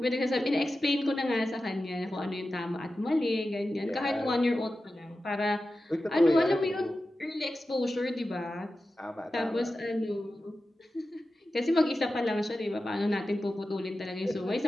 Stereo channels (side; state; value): both; normal; correlation 0.93